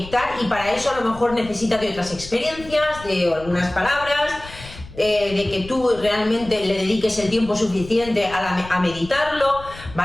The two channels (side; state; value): left; noise; rumble, 16 dB below the sound